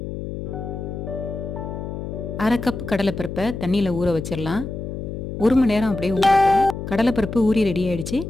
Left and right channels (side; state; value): left; noise; hum, 7 dB below the sound